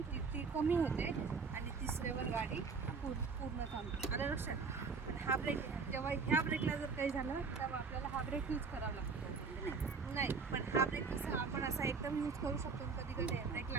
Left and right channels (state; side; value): quieter; left; 5.0 dB